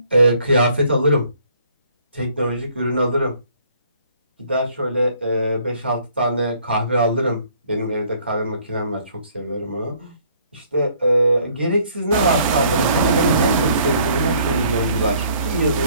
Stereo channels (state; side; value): inverted; both; correlation -0.62